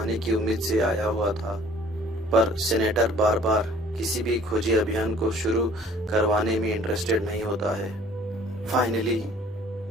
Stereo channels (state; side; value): normal; both; correlation 0.54